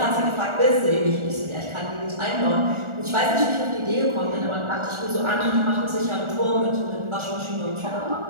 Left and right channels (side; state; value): left; late; 1.4 ms